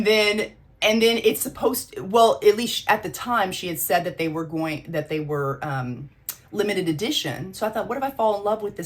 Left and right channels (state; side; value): identical; both; correlation 1.00